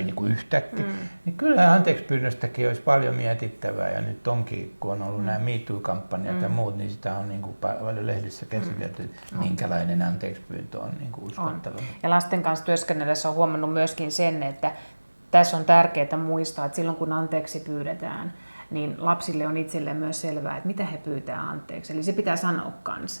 niinku yhtäkkiä. Niin kyllä anteeksipyynnöstäkin olisi paljon mietittävää, ja nyt onkin, kun on ollut nämä MeToo-kampanjat ja muut, niin sitä on niinku paljon lehdissä käsitelty, minkälainen anteeksipyyntö on niinku uskottava. Ja lasten kanssa työskennellessä on huomannut myöskin sen, että tässä on tärkeää muistaa, että silloin kun anteeksi pyydetään, niin lapsille on itselleen myös selvää, että mitä he pyytää anteeksi. Eli se pitää sanoa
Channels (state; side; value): inverted; both; correlation -1.00